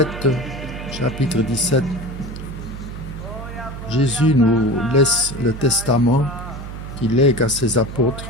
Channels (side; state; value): right; noise; hum, 10 dB below the sound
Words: chapitre 17, Jésus nous laisse le testament qu'il lègue à ses apôtres.